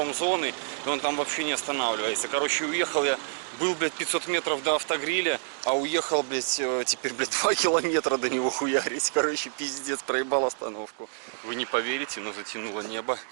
и он там вообще не останавливается. Короче, уехал я, был, блядь, 500 метров до автогриля, а уехал, блядь, теперь, блядь, 2 километра до него хуярить. Короче, пиздец, проебал остановку. Вы не поверите, но затянуло небо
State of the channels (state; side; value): silent; left; digital silence